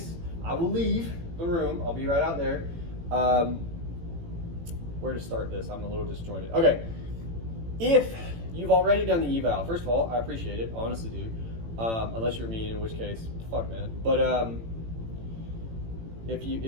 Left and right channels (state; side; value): late; left; 18 ms